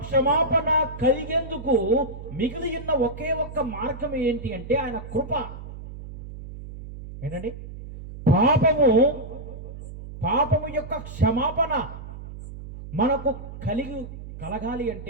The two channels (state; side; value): noise; right; hum, 12 dB below the sound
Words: క్షమాపణ కలిగేందుకు మిగిలి ఉన్న ఒకే ఒక్క మార్గం ఏంటి అంటే ఆయన కృప. ఏంటండి? పాపము యొక్క క్షమాపణ మనకు కలగాలి